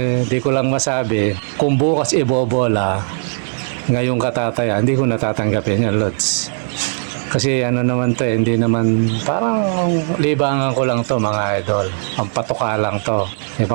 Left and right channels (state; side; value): silent; left; 61 dB below the other